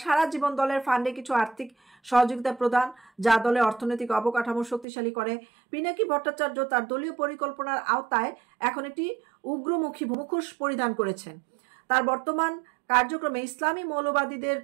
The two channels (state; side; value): drops out; left; at 4.9 s